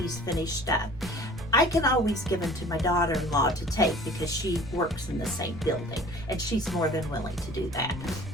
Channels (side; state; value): right; noise; rumble, 15 dB below the sound